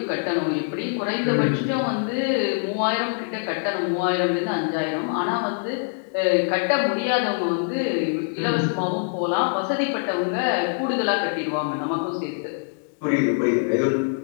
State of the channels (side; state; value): right; silent; digital silence